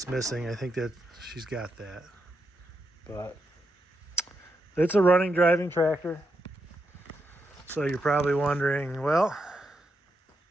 missing. I think that she's got that. But it's a running, driving tractor. So you're probably wondering, well,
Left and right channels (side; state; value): both; normal; correlation 0.83